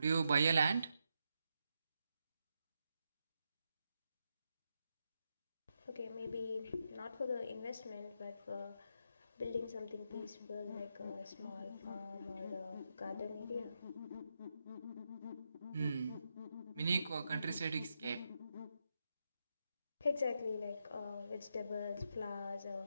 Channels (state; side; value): inverted; both; correlation -0.84